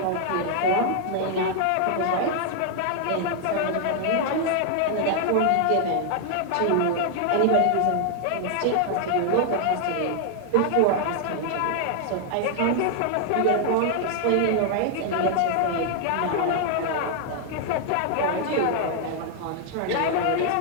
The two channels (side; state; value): both; different; correlation 0.00